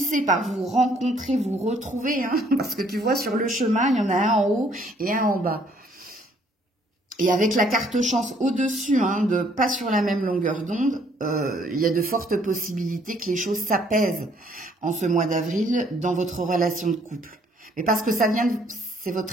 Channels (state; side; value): normal; both; correlation 0.64